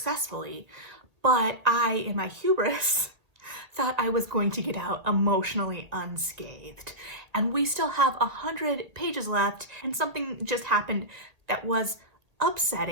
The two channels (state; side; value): late; left; 1.7 ms